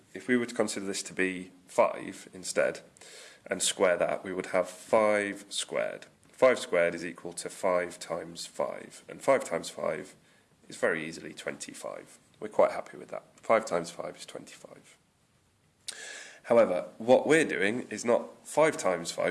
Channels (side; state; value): both; identical; correlation 1.00